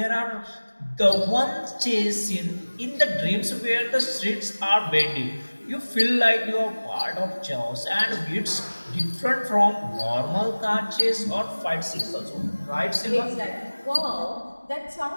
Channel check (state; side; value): inverted; both; correlation -1.00